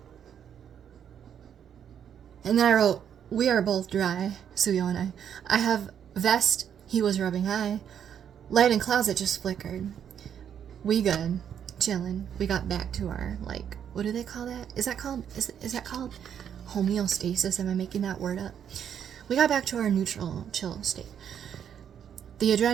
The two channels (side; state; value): left; quieter; 8.7 dB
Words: And then I wrote, we are both dry, Suyo and I. I have vest, he was rubbing eye. Light in closet just flickered. We good, chillin'. We got back to our, like, what do they call that? Is that called homeostasis? Am I making that word up? We got back to our neutral, chill state. The